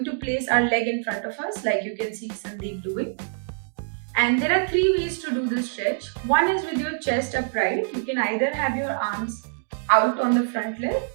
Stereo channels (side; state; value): left; silent; digital silence